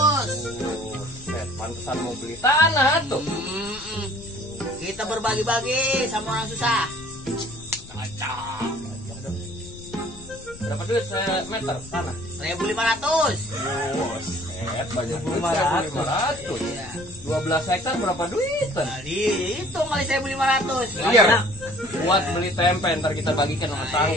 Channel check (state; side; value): noise; left; rumble, 19 dB below the sound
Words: Buset, pantesan mau beli tanah tuh. Kita berbagi-bagi sama orang susah. Cocok. Berapa duit meter tanah? 1.500. Buset, banyak duit 1.500. 1.500. Iya. 12 hektar berapa duitan? Kali itu kali 1.500. Iya. Buat beli tempe ntar kita bagikan sama